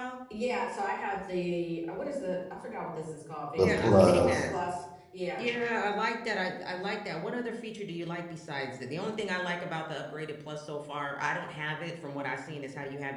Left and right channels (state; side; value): identical; both; correlation 1.00